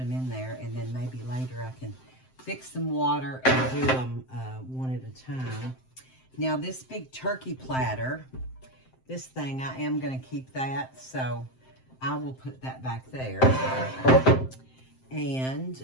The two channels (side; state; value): right; late; 7.7 ms